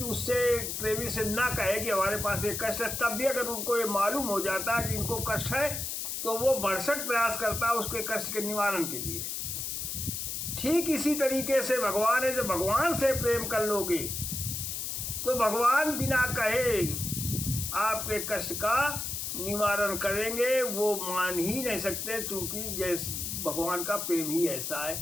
उससे, प्रेमी से ना कहे कि हमारे पास एक कष्ट है, तब भी अगर उनको ये मालूम हो जाता है कि इनको कष्ट है तो वो भरसक प्रयास करता है उसके कष्ट के निवारण के लिए। ठीक इसी तरीके से भगवान है, जब भगवान से प्रेम कर लोगे तो भगवान बिना कहे आपके कष्ट का निवारण करेंगे वो मान ही नहीं सकते, क्योंकि जैसे भगवान का प्रेम ही ऐसा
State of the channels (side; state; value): left; noise; hiss, 4 dB below the sound